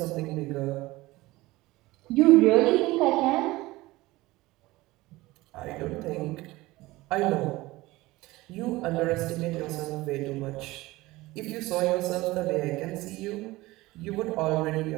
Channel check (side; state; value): left; quieter; 19.6 dB